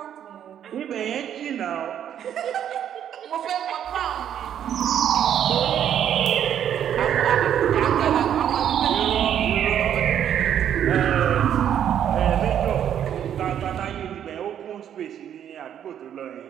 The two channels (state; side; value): quieter; left; 9.7 dB